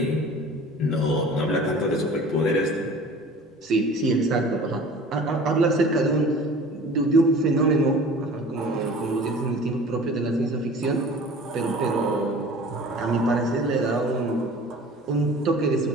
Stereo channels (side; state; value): both; normal; correlation 0.43